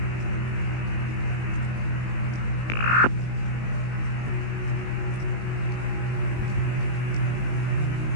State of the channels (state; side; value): late; right; 19 ms